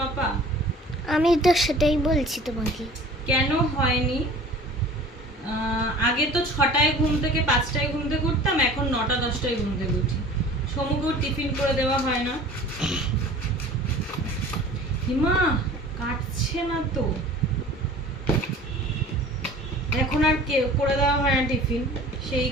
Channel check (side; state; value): both; normal; correlation 0.45